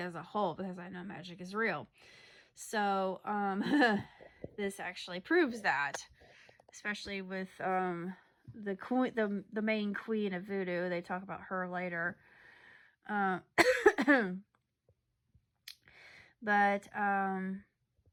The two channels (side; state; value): both; identical; correlation 1.00